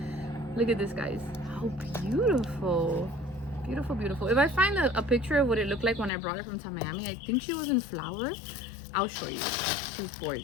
Look at this, guys. How beautiful. Beautiful, beautiful. If I find a picture of what it looked like when I brought her from Miami, I think she was in flower. I'll show you. She's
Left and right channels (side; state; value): right; drops out; at 6.1 s